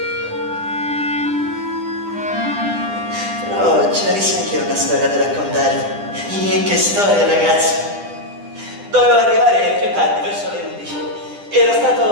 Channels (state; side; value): late; left; 10 ms